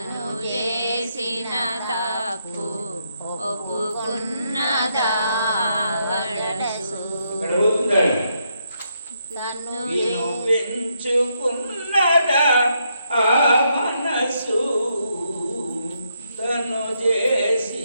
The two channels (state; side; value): inverted; both; correlation -0.78